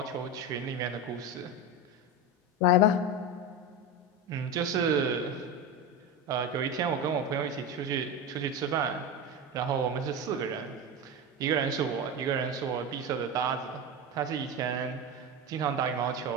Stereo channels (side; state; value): both; normal; correlation 0.20